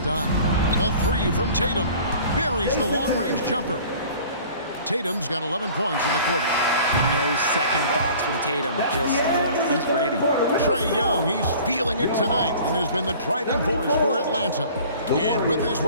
done. The 3 from Tatum. Buries the long-range jumper. Tatum's got 11 points in the quarter. No second thoughts from Tatum. Just look, he's ready. Trae Young, he's feeling it tonight and has been the driving force for Atlanta. And with his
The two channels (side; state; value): both; inverted; correlation -0.47